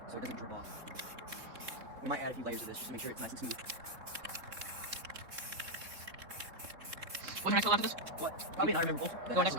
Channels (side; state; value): left; late; 3.7 ms